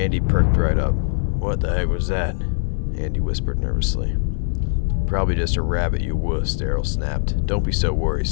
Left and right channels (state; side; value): silent; right; 65 dB below the other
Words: perked right up. "What the heck was that?" Andy whispered nervously. "Probably just a rabbit, you wuss," Daryl snapped. "Don't be so